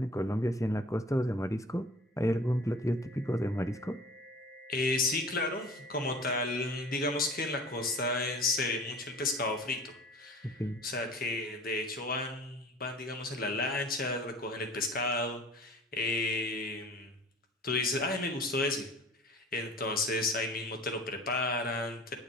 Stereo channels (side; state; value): both; normal; correlation 0.44